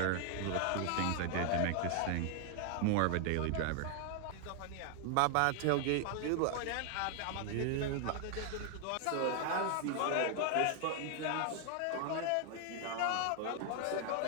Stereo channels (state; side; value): different; both; correlation 0.00